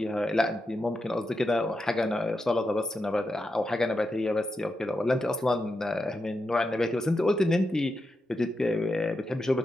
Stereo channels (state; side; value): normal; both; correlation 0.87